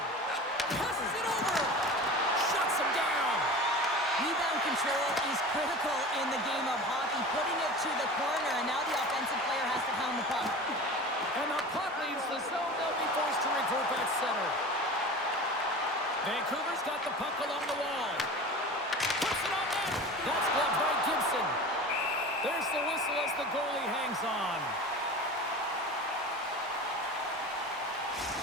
Passes it over. Shuts him down. Rebound control is critical in the game of hockey. Putting it to the corner, and now the offensive player has to pound the puck. And the puck leaves the zone. They'll be forced to regroup at center. Vancouver's got the puck along the wall. Puts it on net. That's gloved by Gibson. There's the whistle as the goalie hangs on.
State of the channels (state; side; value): normal; both; correlation 0.35